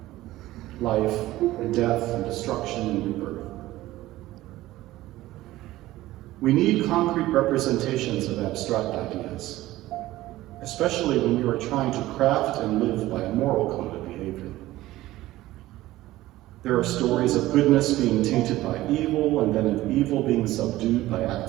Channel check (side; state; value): left; quieter; 16.4 dB